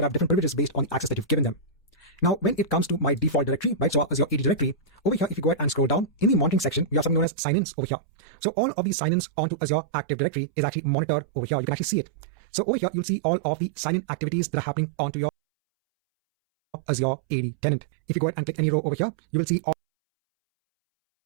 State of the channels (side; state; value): left; drops out; at 7.2 s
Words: have different privileges based on the access that you've given them. Now, when it comes to my default directory, right, so Azure AD directory, over here, if you go ahead and scroll down, in the monitoring section, we have something known as sign-ins over here. So all of these sign-ins onto Azure Active Directory is actually monitored over here. You can actually see it. So over here, you'll see all of the sign-in activities that are happening onto your Azure AD tenant. If you go ahead and click any row over here, you will see